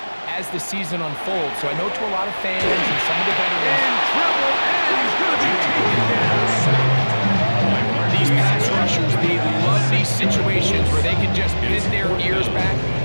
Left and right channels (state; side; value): inverted; both; correlation -1.00